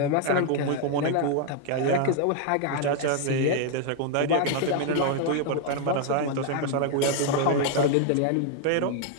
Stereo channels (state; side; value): different; both; correlation 0.00